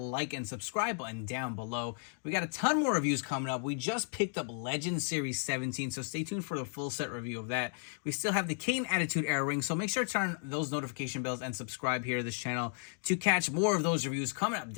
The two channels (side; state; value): right; silent; digital silence